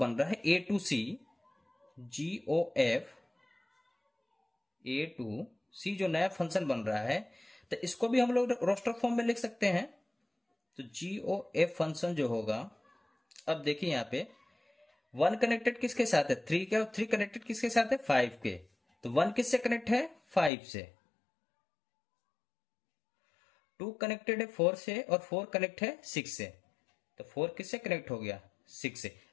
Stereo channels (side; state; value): right; drops out; at 20.5 s